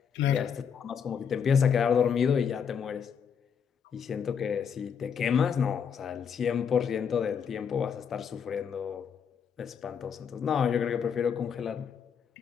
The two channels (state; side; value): quieter; right; 7.2 dB